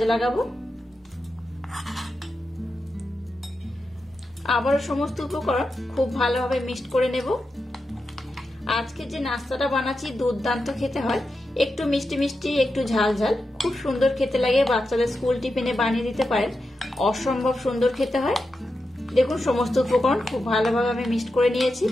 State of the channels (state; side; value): normal; both; correlation 0.89